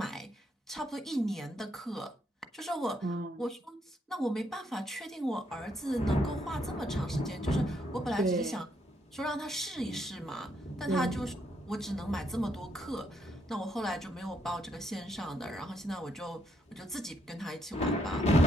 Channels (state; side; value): normal; both; correlation 0.75